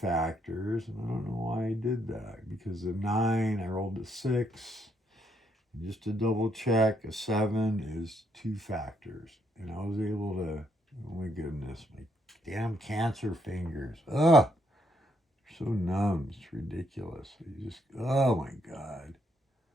and I don't know why I did that. Because the 9, I rolled a 6. And just to double check, a 7 is 2 factors. And I was able to, oh my goodness, my damn cancer fingers. Ugh, so numb. It's ridiculous. You just, oh my God.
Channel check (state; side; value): normal; both; correlation 0.74